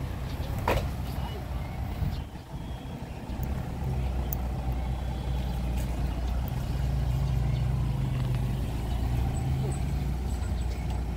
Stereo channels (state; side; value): identical; both; correlation 1.00